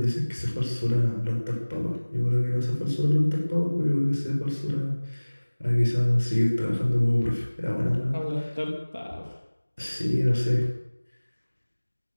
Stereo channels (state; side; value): inverted; both; correlation -1.00